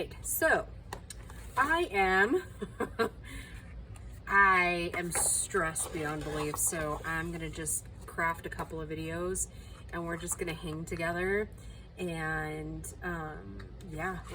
so I am stressed beyond belief, so I'm gonna just craft a couple of videos and we're just gonna hang together and yeah,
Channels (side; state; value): both; identical; correlation 1.00